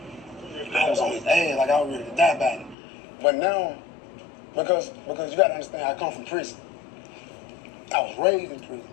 I was on his ass, like I was ready to die about it. But now, because you gotta understand, I come from prison. I was raised in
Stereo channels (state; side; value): drops out; right; at 2.8 s